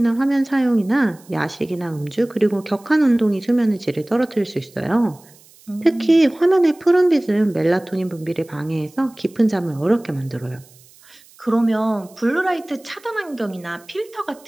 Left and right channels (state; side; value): noise; right; hiss, 26 dB below the sound